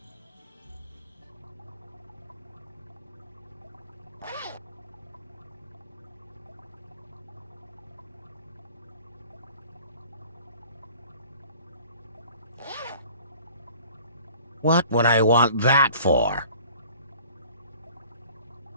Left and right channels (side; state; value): both; inverted; correlation -0.49